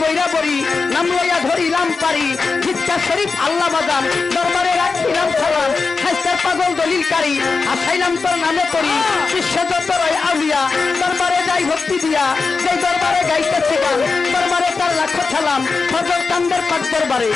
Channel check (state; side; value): quieter; right; 4.5 dB